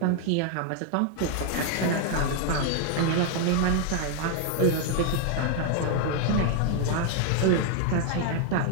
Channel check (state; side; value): different; both; correlation 0.00